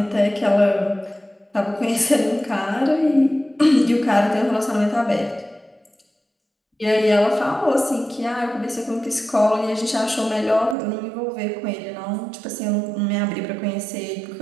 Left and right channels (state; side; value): drops out; left; at 10.8 s